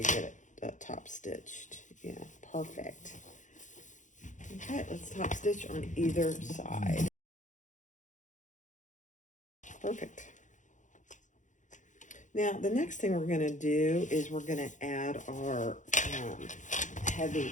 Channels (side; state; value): right; late; 0.36 ms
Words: get it top stitched. Yeah, perfect. Okay, let's top stitch on either side. Perfect. Now, the next thing we're going to do is we're going to add our heavy